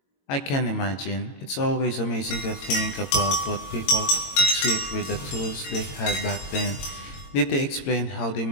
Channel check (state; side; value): late; right; 22 ms